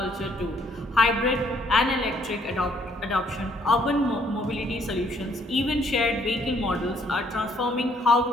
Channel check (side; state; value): both; normal; correlation 0.66